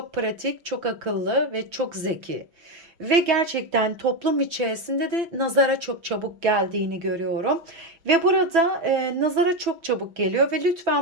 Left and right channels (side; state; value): left; late; 5.8 ms